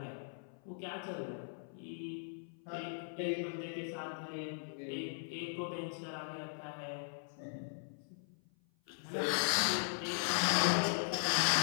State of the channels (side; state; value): right; silent; 52 dB below the other